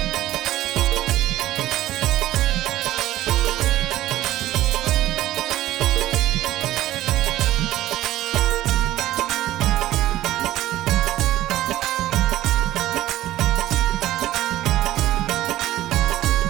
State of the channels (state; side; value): quieter; left; 14.7 dB